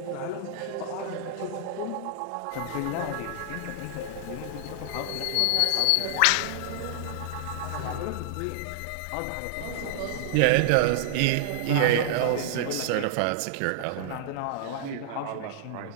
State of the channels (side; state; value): both; different; correlation -0.01